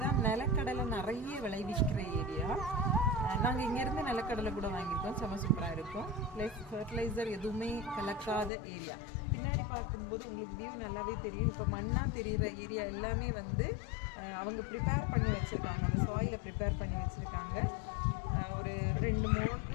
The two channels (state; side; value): drops out; right; at 8.5 s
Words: தான் நிலக்கடலை நிறைய விளைவிக்கிற ஏரியா. நாங்கள் இங்கேருந்து நிலக்கடலை கூட வாங்கியிருக்கோம். செம்ம சூப்பராக இருக்கும். ப்ளஸ் ஃபர்டிலைசர் எதுவுமே கலக்காத ஏரியா. பின்னாடி பார்க்கும்போது உங்களுக்கு வியூ நல்லாவே தெரியும். இப்போ மண்ணாக தெரிகிற ஏரியா எல்லாமே வந்து அவங்க ப்ரிப்பேர் பண்ணி வச்சுருக்காங்க. அந்த சாயிலை ப்ரிப்பேர் பண்ணி வச்சுருக்காங்க. ஒரு